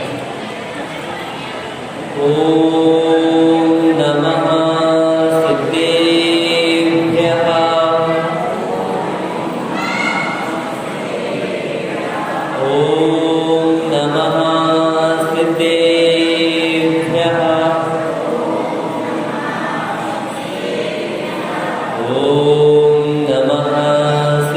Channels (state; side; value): identical; both; correlation 1.00